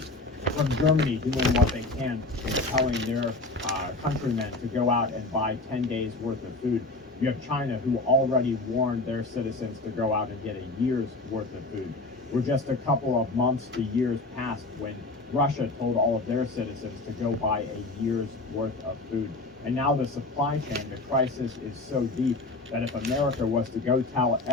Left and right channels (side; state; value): right; quieter; 3.1 dB